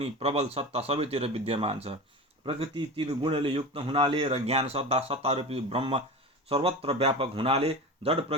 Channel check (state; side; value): normal; both; correlation 0.29